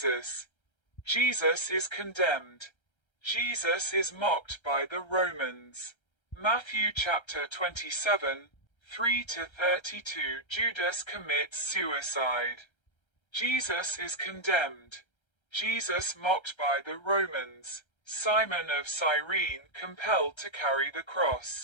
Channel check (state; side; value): late; right; 1.3 ms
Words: Jesus is condemned. Jesus is mocked by the Romans. Matthew chapter 27, 3-32 Judas commits suicide. Jesus is condemned. Jesus mocked by the Romans. Simon of Cyrene compelled to carry the